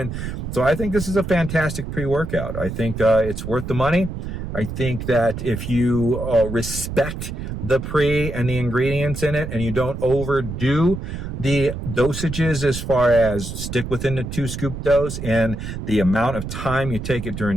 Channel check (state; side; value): noise; right; rumble, 6 dB below the sound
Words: So I think this is a fantastic pre-workout. I think it's worth the money. I think that if you respect the pre and the ingredients in it, and you don't overdo the dosages as far as stick within the 2 scoop dose and the amount of time you take it